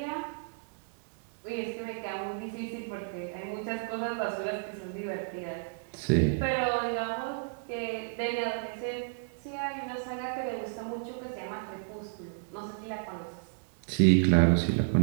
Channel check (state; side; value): silent; left; digital silence